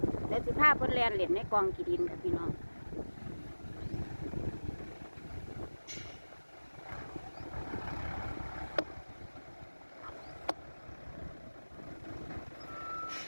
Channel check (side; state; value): both; inverted; correlation -1.00